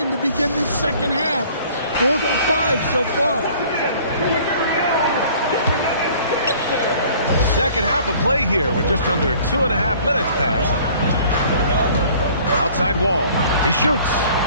to begin this second half. 4 for 5 so far. Second half of play here with just under 2.5 minutes passed. Outside Wall. He shoots.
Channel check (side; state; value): both; inverted; correlation -0.53